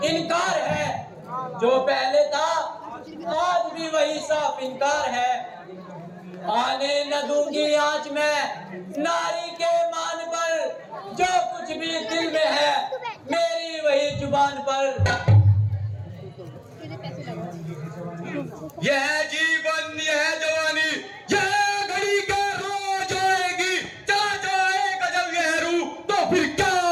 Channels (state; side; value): identical; both; correlation 1.00